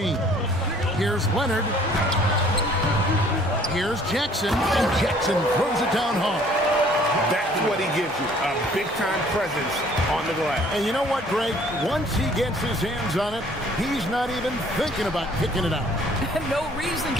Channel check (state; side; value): normal; both; correlation 0.57